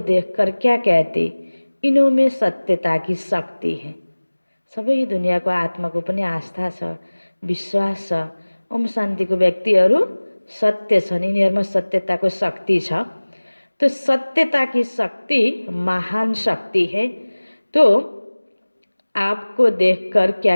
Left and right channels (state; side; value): inverted; both; correlation -1.00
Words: क्या कहते, इनों में सत्यता की शक्ति है। सबै दुनियाँको आत्माको पनि आस्था छ, विश्वास छ। ओम शान्तिको व्यक्तिहरू सत्य छन्, यिनीहरूमा सत्यताको शक्ति छ। तो सत्यता की शक्ति महान शक्ति है। तो आपको देखकर क्या